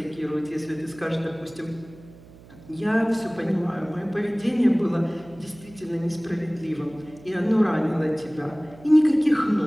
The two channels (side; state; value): right; noise; hum, 21 dB below the sound